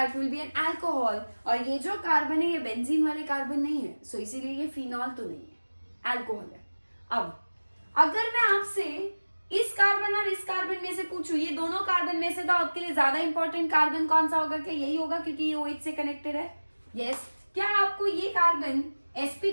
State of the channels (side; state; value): both; inverted; correlation -1.00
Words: will be an alcohol, और ये जो कार्बन है ये बेंजीन वाले कार्बन नहीं है, सो इसीलिए ये फिनॉल तो नहीं है, अल्कोहल है। अब अगर मैं आपसे इस कार्बन और इस कार्बन में से पूछूं, ये दोनों कार्बन में से तो आपके लिए ज्यादा इंपॉर्टेंट कार्बन कौन सा होगा? क्या यही होगा क्योंकि ये OH से कनेक्टेड है? यस। क्या आपको ये कार्बन